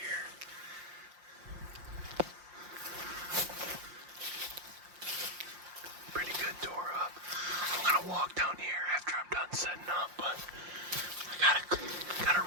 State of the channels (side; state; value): left; late; 5.7 ms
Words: Pretty good door up. I'm gonna walk down here after I'm done setting up, but I got a